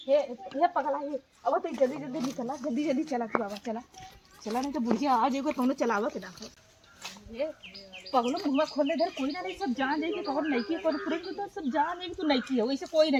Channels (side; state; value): both; identical; correlation 1.00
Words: ये पगला ये, अब तो जल्दी जल्दी निकला, जल्दी जल्दी चला तू बाबा, चला चला, नहीं तो बुढ़िया आ जाएगा तो चलावा के देखो। ये पगलो मुँह खोलने दे, कोई ना नहीं, सब जान जाएगी तो और नईकी पर पूरे तो सब जान जाएगी, तू नईकी हो, इसे कोई ना